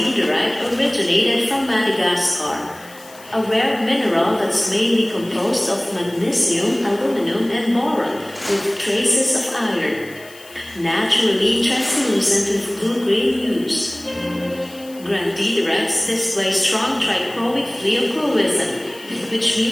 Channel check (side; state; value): left; noise; hiss, 21 dB below the sound